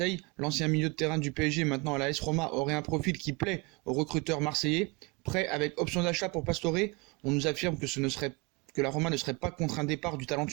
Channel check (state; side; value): quieter; left; 27.5 dB